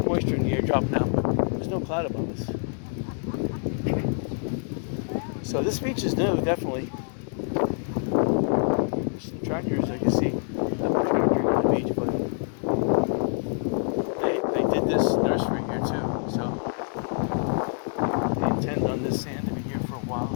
moisture in the air dropping out. There's no cloud above us. So this beach is new, definitely. Some tractors I can see. Not tractor on the beach, but they did this nursery here too. So they intend on this sand in here for a while.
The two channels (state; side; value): silent; right; 61 dB below the other